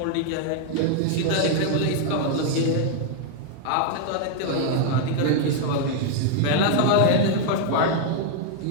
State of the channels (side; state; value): both; different; correlation 0.00